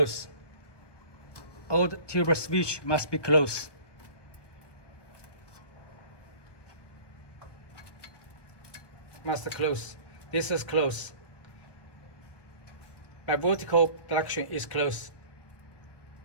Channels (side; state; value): right; late; 1.2 ms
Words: All the tube switch must be closed. Must close. This is closed. By vertical direction is closed.